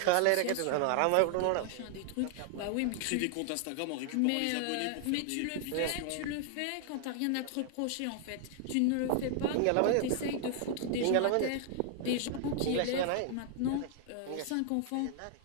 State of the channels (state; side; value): different; both; correlation 0.00